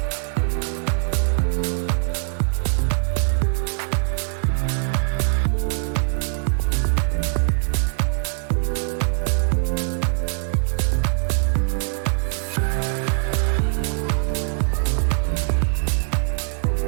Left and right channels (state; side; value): silent; left; 59 dB below the other